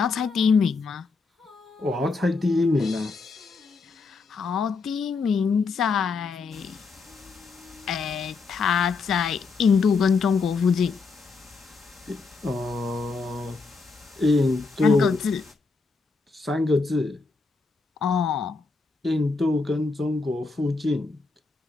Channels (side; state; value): right; quieter; 4.3 dB